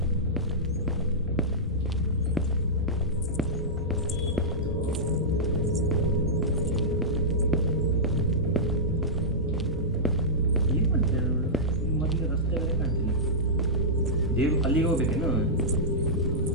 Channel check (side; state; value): both; normal; correlation -0.13